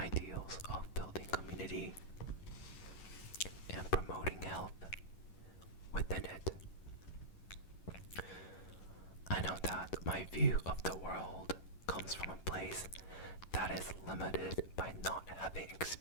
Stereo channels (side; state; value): right; late; 11 ms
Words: of building community and promoting health within it. I know that my view of the world comes from a place that is limited by not having